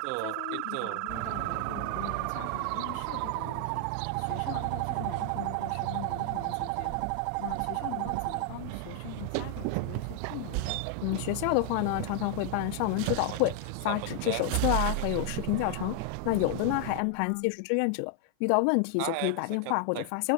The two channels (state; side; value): different; both; correlation 0.00